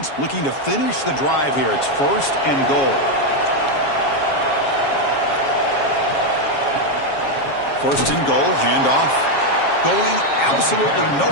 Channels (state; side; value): late; right; 7.3 ms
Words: looking to finish the drive here. It's 1st and goal. 1st and goal, handoff. Going absolutely